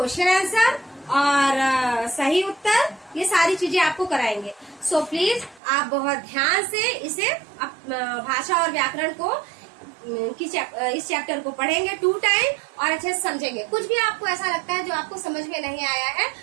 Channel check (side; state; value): left; drops out; at 5.6 s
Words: आंसर और सही उत्तर, ये सारी चीजें आपको कराएंगे। सो प्लीज आप बहुत ध्यान से इसे भाषा और व्याकरण को इस चैप्टर को पढ़ेंगे 2 टाइम और अच्छे से समझेंगे। कुछ भी आपको ऐसा लगता है जो आपको समझ में नहीं आया है,